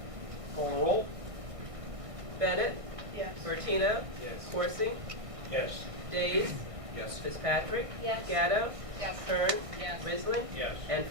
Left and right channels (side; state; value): left; late; 1.5 ms